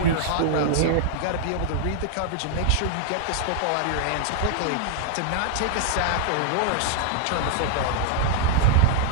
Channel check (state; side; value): different; both; correlation -0.01